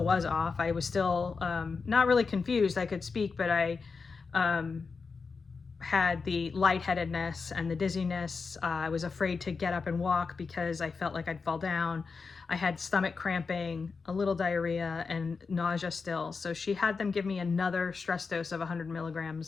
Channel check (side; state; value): right; quieter; 4.8 dB